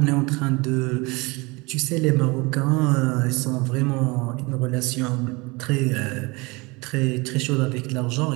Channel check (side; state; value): left; quieter; 25.8 dB